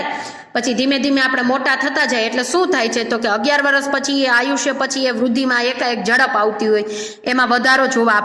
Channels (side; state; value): both; identical; correlation 1.00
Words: પછી ધીમે ધીમે આપણે મોટા થતા જાય એટલે શું થાય છે તો કે 11 વર્ષ પછી એ આયુષ્ય પછી એ વૃદ્ધિમાં એકાએક ઝડપ આવતી હોય, એમાં વધારો જોવા